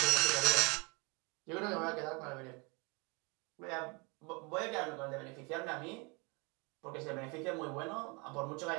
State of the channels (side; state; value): left; quieter; 30.3 dB